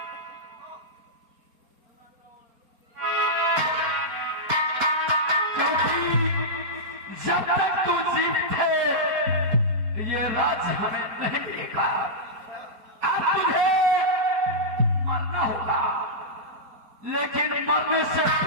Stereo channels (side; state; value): left; late; 4.2 ms